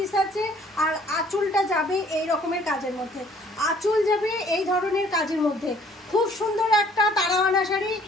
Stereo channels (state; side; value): normal; both; correlation 0.58